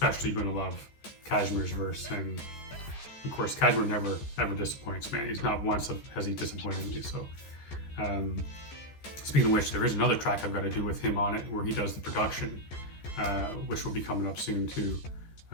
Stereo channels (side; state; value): right; late; 14 ms